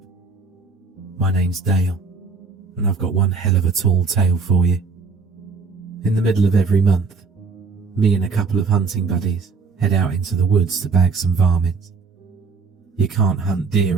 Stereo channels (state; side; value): quieter; left; 4.7 dB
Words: My name's Dale, and I've got one hell of a tall tale for you. In the middle of every month, me and a couple of hunting buddies head out into the woods to bag some varmints. You can't hunt